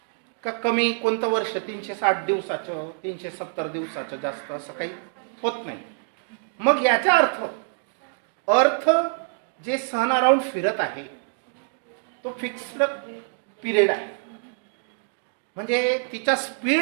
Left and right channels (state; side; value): silent; left; 61 dB below the other